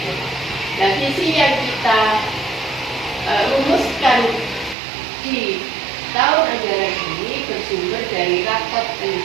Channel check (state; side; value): drops out; left; at 4.8 s